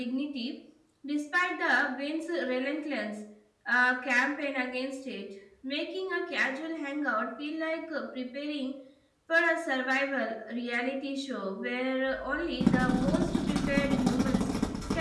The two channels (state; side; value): identical; both; correlation 1.00